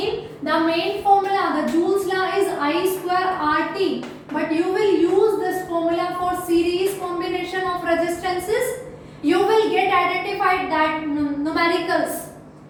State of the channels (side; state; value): both; identical; correlation 1.00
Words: the main formula, the Joule's law is I square RT, but you will use this formula for series combination of resistances. You will get identified that numericals.